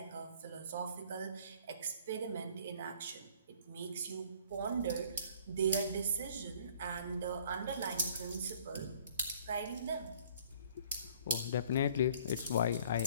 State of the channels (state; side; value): inverted; both; correlation -0.55